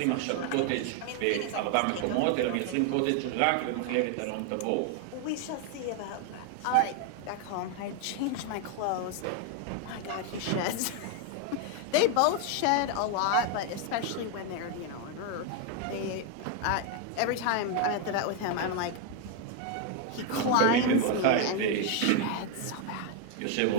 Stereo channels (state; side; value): different; both; correlation 0.01